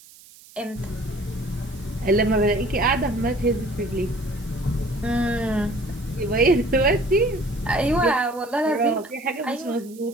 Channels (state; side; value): noise; right; hiss, 23 dB below the sound